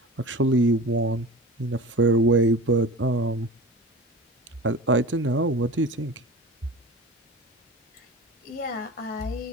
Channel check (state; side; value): normal; both; correlation 0.34